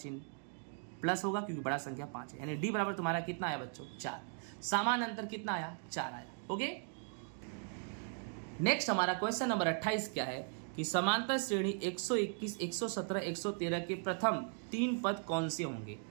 प्लस होगा क्योंकि बड़ा संख्या 5 है, यानी d बराबर तुम्हारा कितना आया बच्चों? 4। सामान्य अंतर कितना आया? 4 आया। ओके, नेक्स्ट हमारा क्वेश्चन नंबर 28 क्या है कि समांतर श्रेणी 121, 117, 113 के प्रथम 3 पद कौन से होंगे।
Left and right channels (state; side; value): silent; left; 52 dB below the other